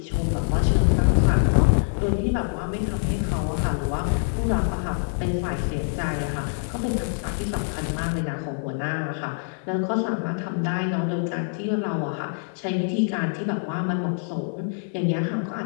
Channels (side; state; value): right; silent; 62 dB below the other